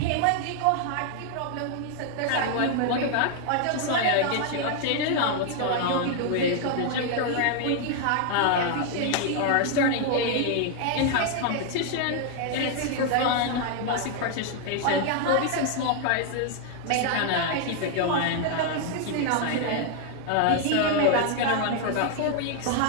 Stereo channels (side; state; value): both; different; correlation 0.00